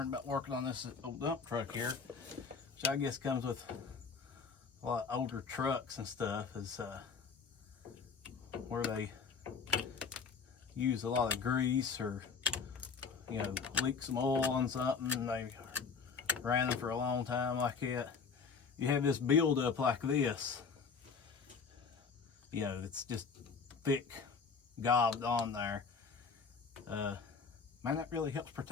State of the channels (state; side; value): quieter; right; 5.4 dB